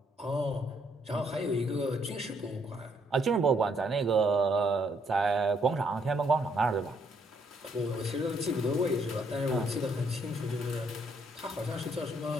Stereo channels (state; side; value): normal; both; correlation 0.71